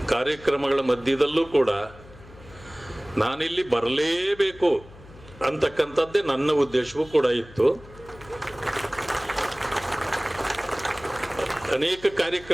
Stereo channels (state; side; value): noise; left; hum, 20 dB below the sound